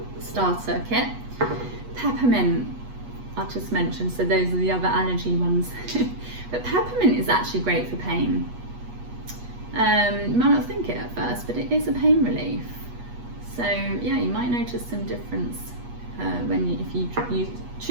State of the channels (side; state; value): left; late; 8.3 ms